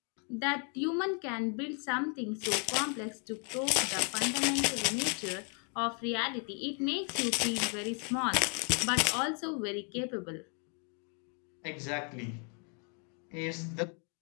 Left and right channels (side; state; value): right; quieter; 39.1 dB